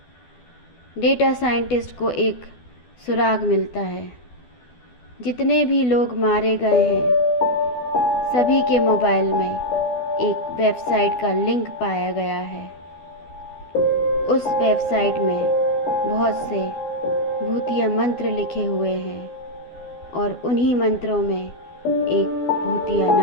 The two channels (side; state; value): right; late; 12 ms